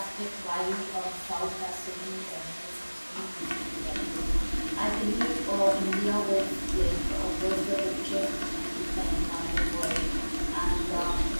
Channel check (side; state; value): both; inverted; correlation -1.00